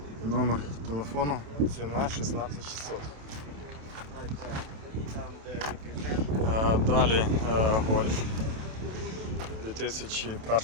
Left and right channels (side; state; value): left; late; 27 ms